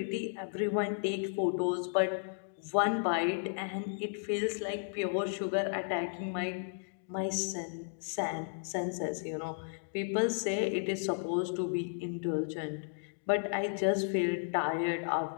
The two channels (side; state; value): right; silent; digital silence